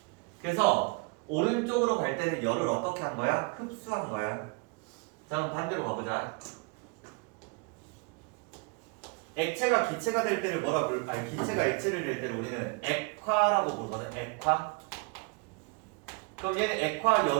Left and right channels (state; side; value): quieter; left; 31.3 dB